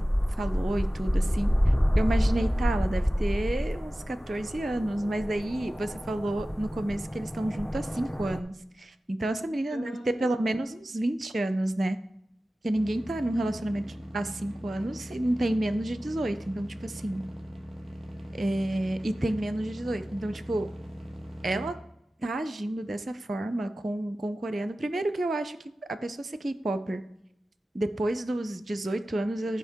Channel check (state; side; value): normal; both; correlation 0.95